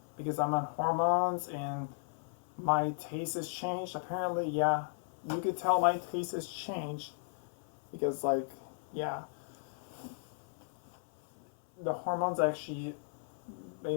because I'm on hormones and my taste has changed. Apparently, yeah, you could tell my taste has changed because, like, yeah, the hormones actually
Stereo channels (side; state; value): right; silent; 54 dB below the other